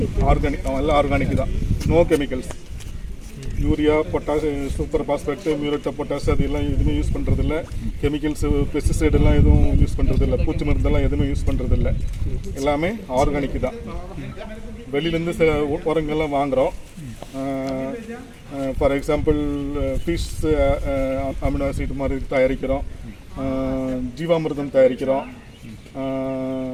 ஆர்கானிக், எல்லாம் ஆர்கானிக் தான். No chemicals. Urea, potash, super phosphate, muriate of potash அது எல்லாம் எதுவுமே யூஸ் பண்ணுறதில்ல. கெமிக்கல்ஸு, பெஸ்டிசைடெல்லாம் எதுவும் யூஸ் பண்ணுறதில்ல. பூச்சி மருந்தெல்லாம் எதுவுமே யூஸ் பண்ணுறதில்ல. எல்லாமே ஆர்கானிக் தான். வெளியிலேருந்து சில உரங்கள்லாம் வாங்குகிறோம். For example fish amino acid மாதிரி தயாரிக்கிறோம். ஜீவாமிர்தம் தயாரிக்கிறோம்.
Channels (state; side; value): identical; both; correlation 1.00